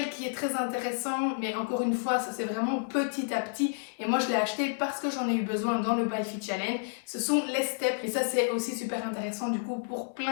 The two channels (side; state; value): right; silent; digital silence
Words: qui est très intéressant, mais encore une fois ça c'est vraiment petit à petit, et moi je l'ai acheté parce que j'en ai eu besoin dans le MyFit Challenge, ce sont les steps, et ça c'est aussi super intéressant du coup pour